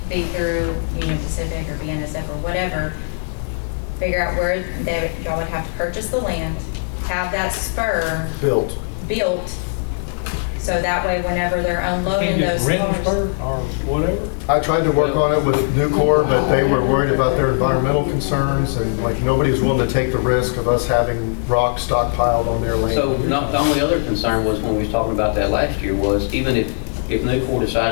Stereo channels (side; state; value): right; silent; digital silence